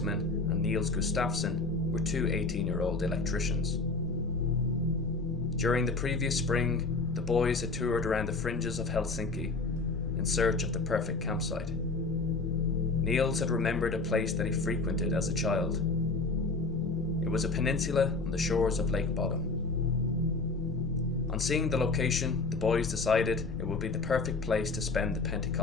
and Niels Gustafsson, were 2 18-year-old electricians. During the previous spring, the boys had toured around the fringes of Helsinki in search of the perfect campsite. Niels had remembered a place that he frequented as a child. It was a peninsula on the shores of Lake Bodom. On seeing the location, the boys decided it would be the perfect place to spend the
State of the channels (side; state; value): right; quieter; 3.7 dB